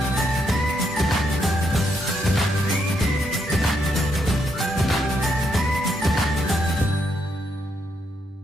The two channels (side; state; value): both; normal; correlation 0.77